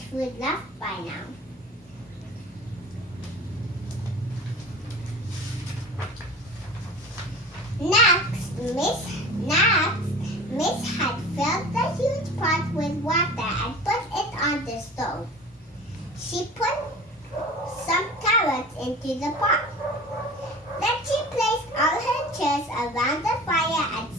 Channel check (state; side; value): normal; both; correlation 0.38